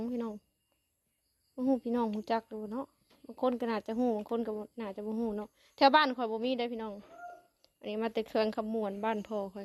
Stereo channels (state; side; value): identical; both; correlation 1.00